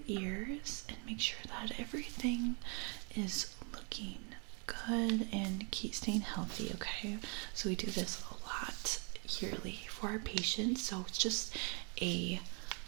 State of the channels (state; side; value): quieter; left; 36.0 dB